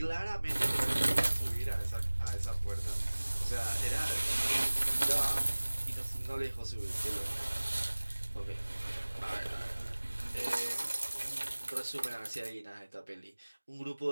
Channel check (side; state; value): both; inverted; correlation -1.00